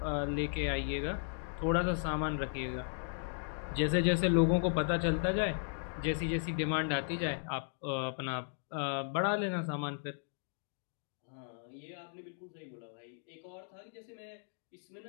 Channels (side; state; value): right; silent; digital silence